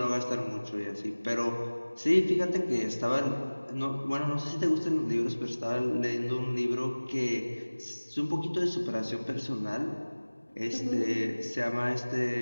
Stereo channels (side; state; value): both; inverted; correlation -1.00